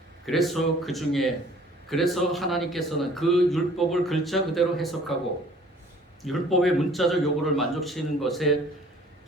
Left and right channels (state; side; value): normal; both; correlation 0.53